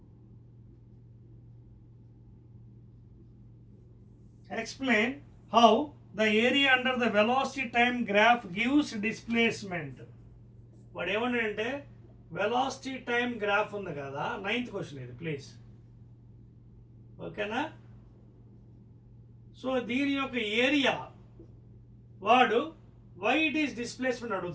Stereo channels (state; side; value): identical; both; correlation 1.00